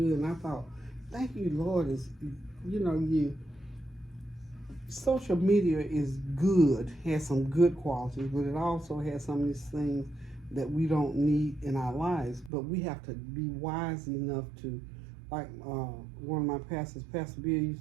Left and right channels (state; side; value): drops out; left; at 12.5 s